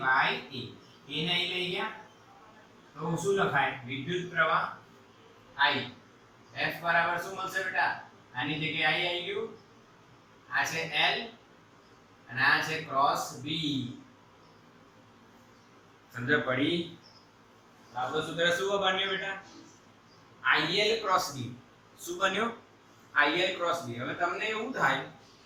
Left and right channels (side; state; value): both; identical; correlation 1.00